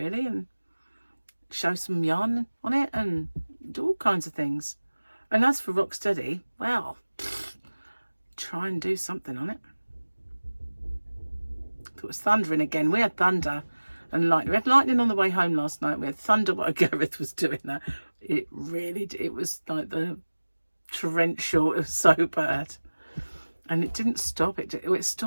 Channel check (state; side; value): inverted; both; correlation -1.00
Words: And show some yarn on it and do all kinds of things. And as for Rocksteady, well, try and do something on it. If it was thundering again, we had thunder and lightning. We had lightning on the way home last night. We had thunder while Gareth was doing that. It really, it was like the torrential. It was so bad. And it didn't stop. It